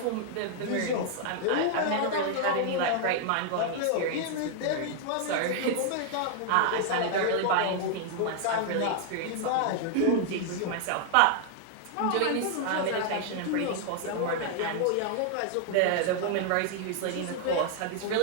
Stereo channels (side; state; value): both; different; correlation 0.00